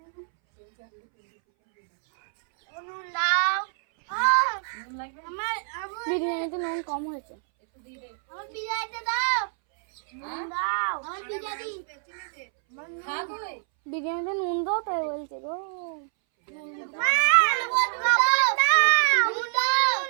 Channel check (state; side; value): silent; left; 61 dB below the other